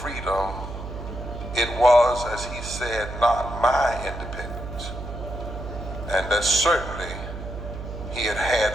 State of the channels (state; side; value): noise; right; hum, 9 dB below the sound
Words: it was, as he said, not my independence, and that certainly he had